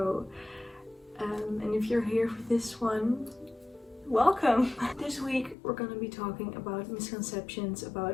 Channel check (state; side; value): drops out; right; at 5.6 s